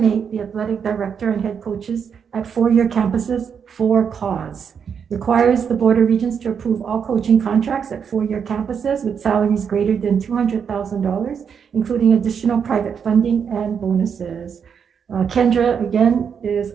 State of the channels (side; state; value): left; quieter; 7.0 dB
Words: the athletic director and head coaches at four-year campuses for cause. Requires the Board of Regents to approve all coaching contracts at four-year campuses with salaries greater than $200,000, including additional private funding and bonuses. Kendra, again, is